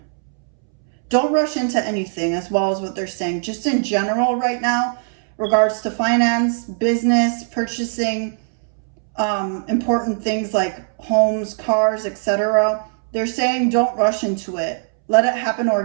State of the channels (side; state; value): left; silent; 65 dB below the other